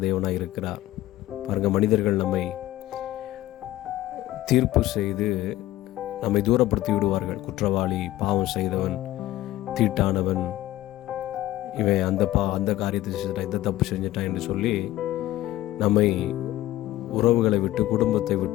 தேவனாய் இருக்கிறார். பாருங்கள், மனிதர்கள் நம்மை தீர்ப்பு செய்து நம்மை தூரப்படுத்தி விடுவார்கள். குற்றவாளி, பாவம் செய்தவன், தீட்டானவன், இவன் அந்த காரியத்தை செஞ்சிட்டான், இந்த தப்பு செஞ்சிட்டான் என்று சொல்லி நம்மை உறவுகளை விட்டு, குடும்பத்தை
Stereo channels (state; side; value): quieter; right; 15.4 dB